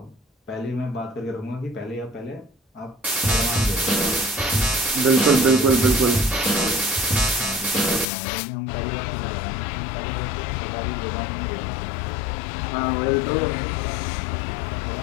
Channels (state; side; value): drops out; right; at 8.1 s